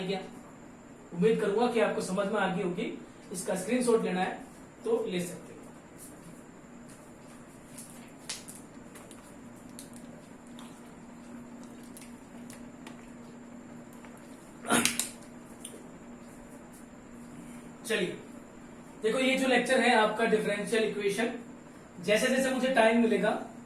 क्या? उम्मीद करूंगा कि आपको समझ में आ गई होगी। इसका स्क्रीनशॉट लेना है तो ले सकते हो। चलिए देखो, ये जो लेक्चर है आपका डिफरेंशियल इक्वेशन, जैसे जैसे मुझे टाइम मिलेगा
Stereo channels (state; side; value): identical; both; correlation 1.00